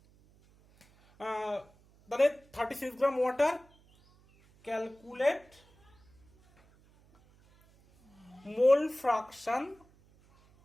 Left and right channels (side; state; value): right; noise; hum, 29 dB below the sound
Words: তাহলে 36 gram water, calculate mole fraction